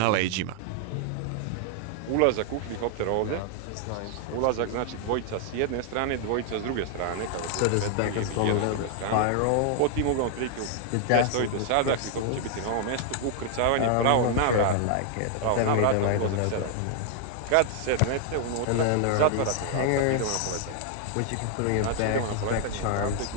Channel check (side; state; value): both; different; correlation 0.00